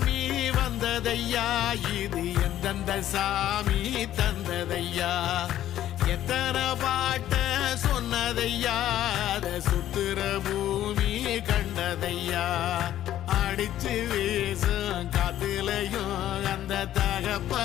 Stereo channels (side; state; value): right; quieter; 12.4 dB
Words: வந்ததையா, இது எந்தெந்த சாமி தந்ததையா, எத்தனை பாட்ட சொன்னதையா, அத சுத்துற பூமி கண்டதையா, அடிச்சு வீசும் காத்துலையும் அந்த